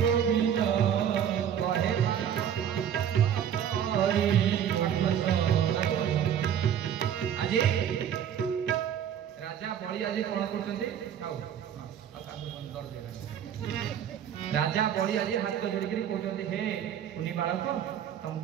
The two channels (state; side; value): quieter; left; 9.2 dB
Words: कहे आज राजा बड़ी आज कौन करछन्ती राजा बड़ी आज हाथ जोड़ी कहते हे कुनी बालक